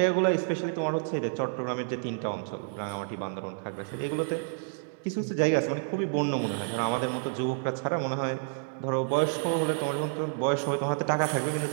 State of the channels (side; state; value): left; silent; digital silence